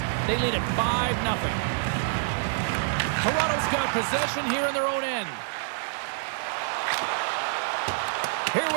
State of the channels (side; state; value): left; silent; digital silence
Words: They lead at 5-0. Toronto's got possession here in their own end. Here